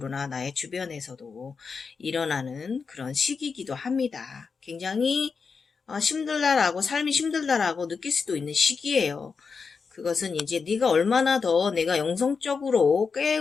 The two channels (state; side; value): quieter; right; 5.3 dB